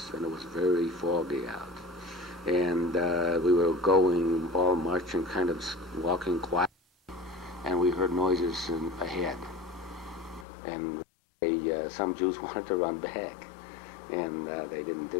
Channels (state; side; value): drops out; right; at 10.5 s